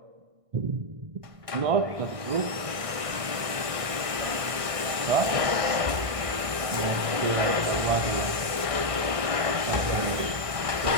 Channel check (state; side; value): late; left; 1.6 ms